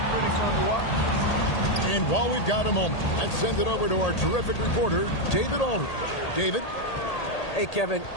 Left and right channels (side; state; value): right; late; 1.8 ms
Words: pretty fun to watch. And while we've got a moment, let's send it over to our terrific reporter, David Aldridge. David? Hey, Kevin,